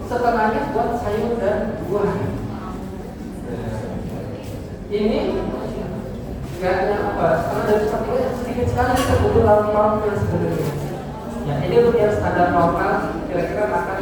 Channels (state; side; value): identical; both; correlation 1.00